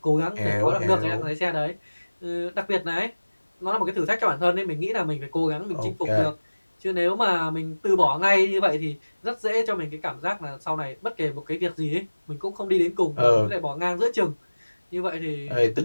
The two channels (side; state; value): both; inverted; correlation -1.00